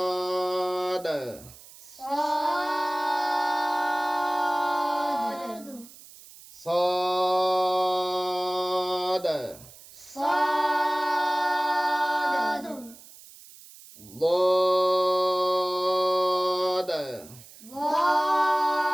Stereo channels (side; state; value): right; noise; hiss, 20 dB below the sound